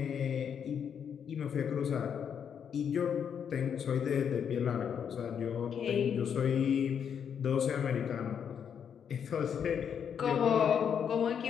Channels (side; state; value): right; quieter; 7.8 dB